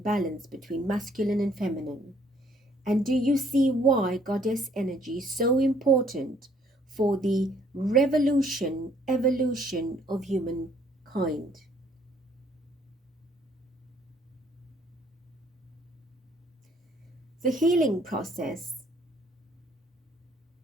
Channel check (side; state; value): both; normal; correlation 0.63